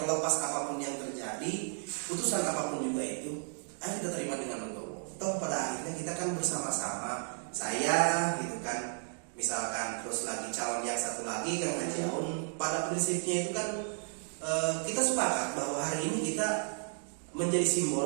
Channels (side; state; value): left; silent; 55 dB below the other